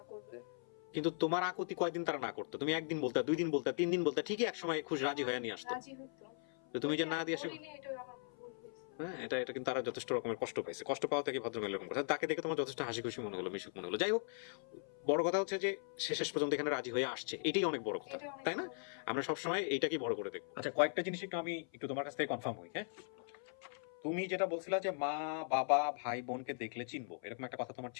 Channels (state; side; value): silent; right; 52 dB below the other